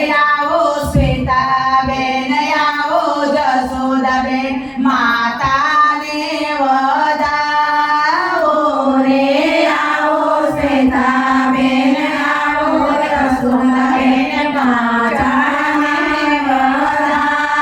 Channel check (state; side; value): identical; both; correlation 1.00